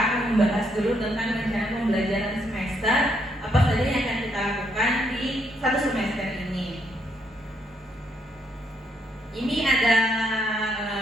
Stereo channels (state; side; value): normal; both; correlation 0.73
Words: membahas dulu tentang rencana pembelajaran semester, apa saja yang akan kita lakukan di satu semester ini. Ini ada